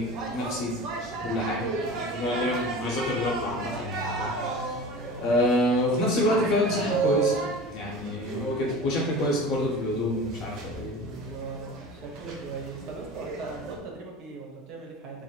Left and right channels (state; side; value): normal; both; correlation 0.36